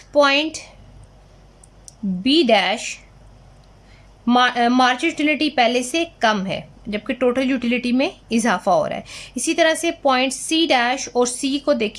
point B dash marginal utility पहले से कम है जबकि टोटल यूटिलिटी में इजाफा हो रहा है। इसी तरह से पॉइंट सी डैश और सी को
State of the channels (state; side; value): identical; both; correlation 1.00